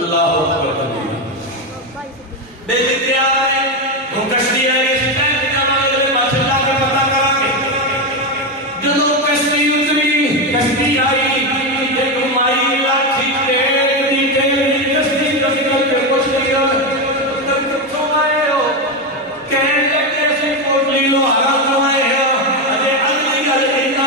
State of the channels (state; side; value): normal; both; correlation 0.11